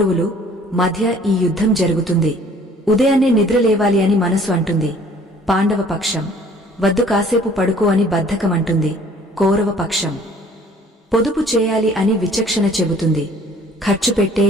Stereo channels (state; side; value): normal; both; correlation 0.54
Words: మధ్య ఈ యుద్ధం జరుగుతుంది. ఉదయాన్నే నిద్రలేవాలి అని మనసు అంటుంది, పాండవ పక్షం. వద్దు కాసేపు పడుకో అని బద్ధకం అంటుంది, కౌరవ పక్షం. పొదుపు చేయాలి అని విచక్షణ చెబుతుంది, ఖర్చు పెట్టే